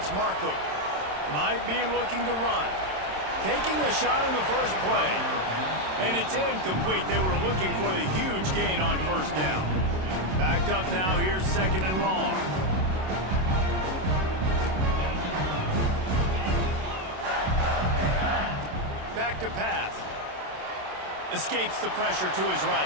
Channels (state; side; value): late; left; 27 ms